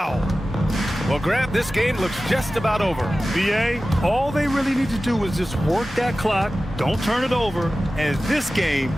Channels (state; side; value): normal; both; correlation 0.95